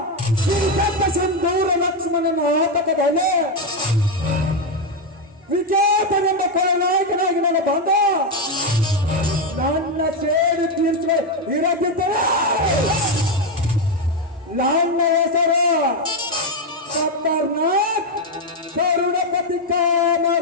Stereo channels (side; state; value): both; normal; correlation 0.05